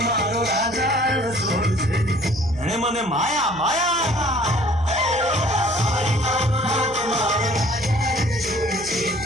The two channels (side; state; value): right; noise; hum, 16 dB below the sound